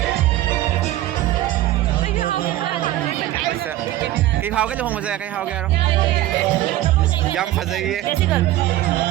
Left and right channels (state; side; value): quieter; left; 14.7 dB